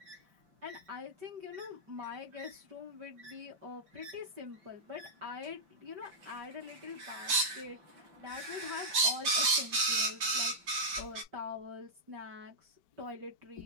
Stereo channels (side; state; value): left; late; 5.1 ms